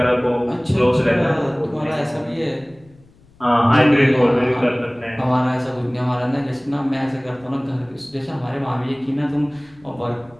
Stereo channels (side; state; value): left; noise; rumble, 28 dB below the sound